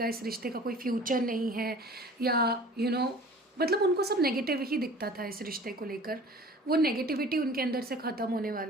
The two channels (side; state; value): both; normal; correlation 0.45